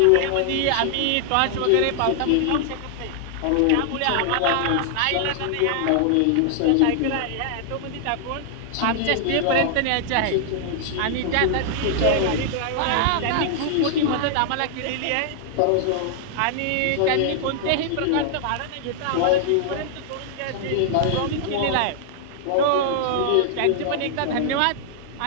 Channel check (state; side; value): different; both; correlation -0.01